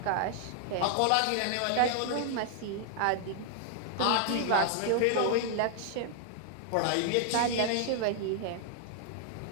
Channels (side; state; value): both; different; correlation 0.00